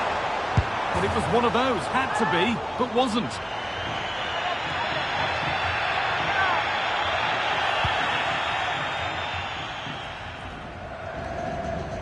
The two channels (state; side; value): identical; both; correlation 1.00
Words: But it was one of those, had to be, but wasn't.